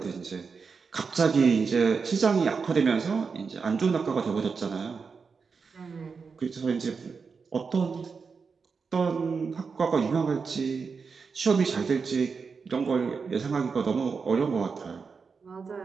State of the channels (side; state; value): left; quieter; 5.2 dB